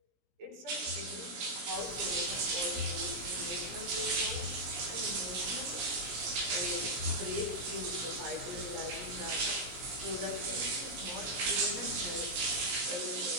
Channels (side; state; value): left; late; 17 ms